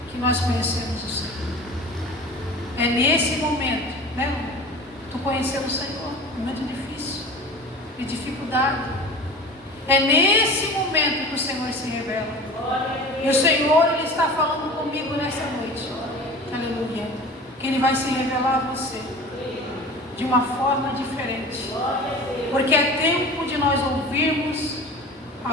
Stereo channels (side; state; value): both; normal; correlation 0.37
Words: que nós conhecemos o Senhor. É nesse momento, né? Tu conheceu o Senhor, momento difícil, de dificuldade. É nesse momento que o Senhor se revela. E o Senhor Ele está falando comigo nessa noite. Aleluia. Que Ele vai se revelar a você de uma forma diferente, porque é tempo de nós ouvirmos